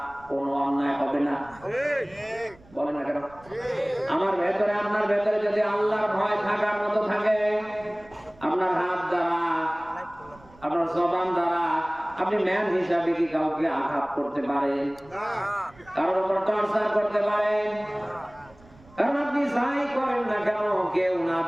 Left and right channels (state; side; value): noise; right; rumble, 25 dB below the sound